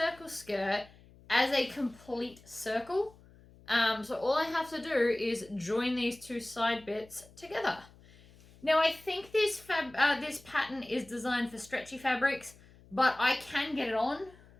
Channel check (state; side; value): noise; left; hum, 24 dB below the sound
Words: skirt as a complete circle. So all I have to do is join these 2 side bits together. Now I think this pattern is designed for stretchy fabrics, but I can get it on.